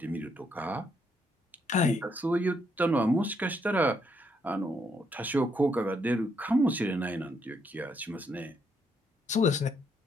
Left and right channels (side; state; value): both; normal; correlation 0.74